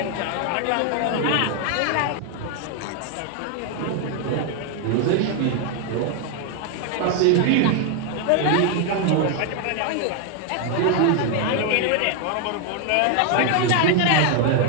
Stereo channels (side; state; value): both; different; correlation 0.01